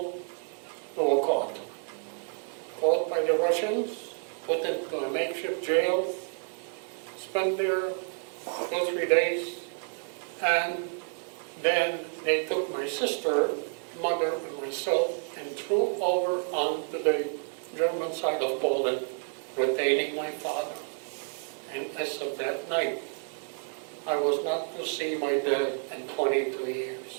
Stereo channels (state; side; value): silent; left; 56 dB below the other